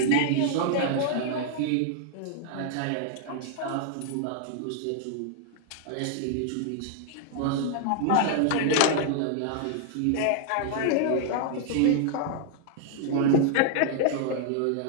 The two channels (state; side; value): different; both; correlation -0.01